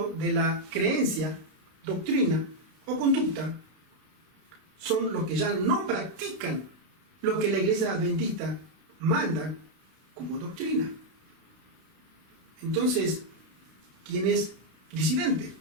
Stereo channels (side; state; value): left; late; 31 ms